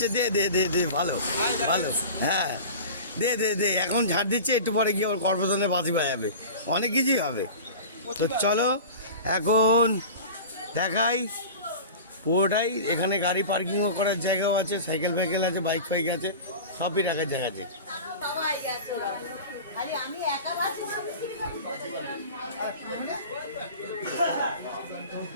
দে দে দে দে, ভালো ভালো, হ্যাঁ দে দে দে। এখন ঝাড় দিচ্ছে, একটু পরে গিয়ে ওর কর্পোরেশনে বাজি বাজাবে, অনেক কিছুই হবে। তো চলো এখন দেখাই পুরোটাই। এখানে গাড়ি পার্কিংও করার জায়গাও আছে, সাইকেল ফাইকেল আছে, বাইক ফাইক আছে, সবই রাখার জায়গা আছে।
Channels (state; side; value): inverted; both; correlation -0.35